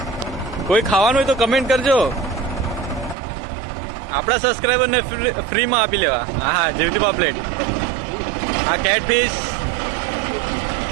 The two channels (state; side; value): drops out; left; at 3.2 s